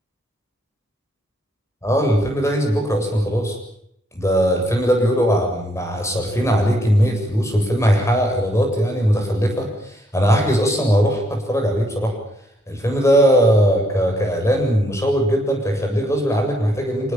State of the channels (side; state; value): both; normal; correlation 0.72